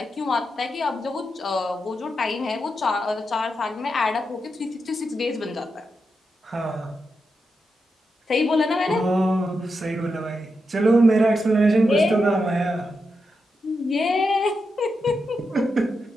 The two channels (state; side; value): normal; both; correlation 0.86